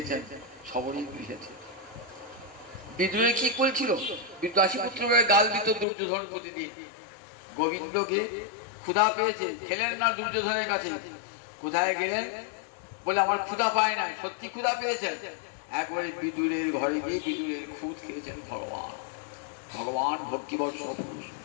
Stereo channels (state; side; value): drops out; right; at 5.9 s